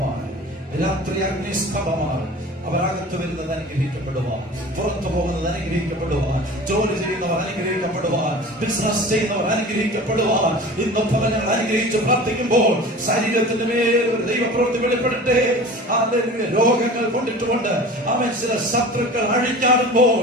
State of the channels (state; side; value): normal; both; correlation 0.38